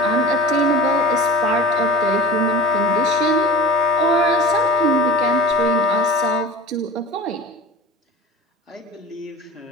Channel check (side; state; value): both; normal; correlation 0.35